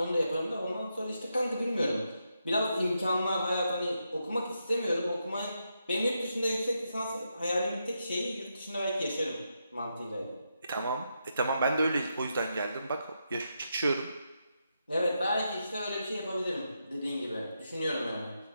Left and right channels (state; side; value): inverted; both; correlation -0.83